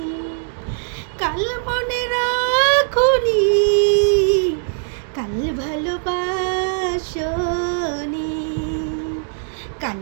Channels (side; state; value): left; silent; 65 dB below the other